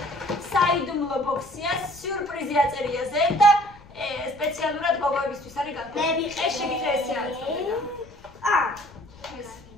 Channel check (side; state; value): left; noise; rumble, 22 dB below the sound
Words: საიდუმლო ბოქსია, სიურპრიზი აწერია ზე და სპეციალურად გოგოებისთვის არის განკუთვნილი. ეს შეგიძლია ესე აწოდე.